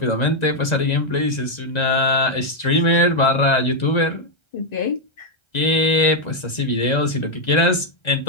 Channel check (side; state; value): right; late; 1.9 ms